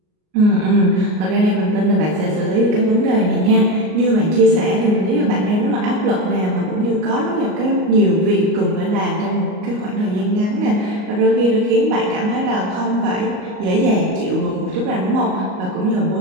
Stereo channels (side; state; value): left; late; 38 ms